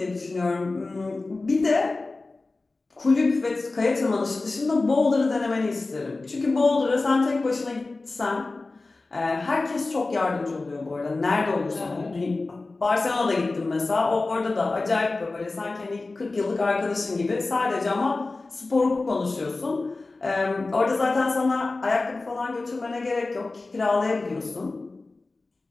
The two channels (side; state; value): right; quieter; 3.4 dB